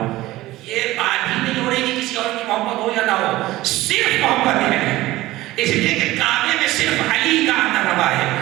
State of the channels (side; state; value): left; quieter; 17.3 dB